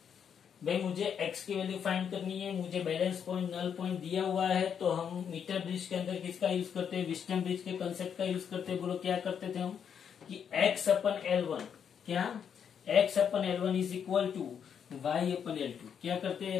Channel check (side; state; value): right; quieter; 7.8 dB